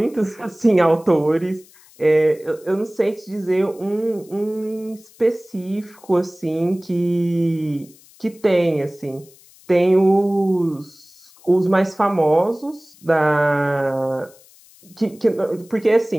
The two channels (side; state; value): left; noise; hiss, 26 dB below the sound